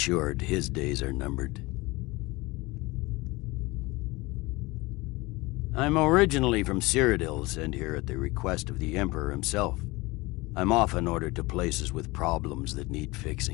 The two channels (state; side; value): quieter; right; 22.5 dB